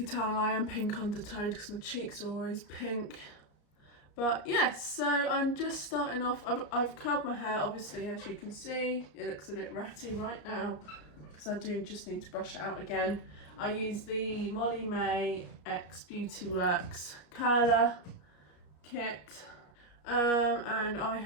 tell I am pink undertoned because my cheeks are always pink. But yes, so I'm just starting off. I've curled my hair, obviously, as you can see. It looks a bit ratty right now because I do just need to brush it out again. I use the Molly May X Beauty Works curler kit, and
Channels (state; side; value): late; right; 33 ms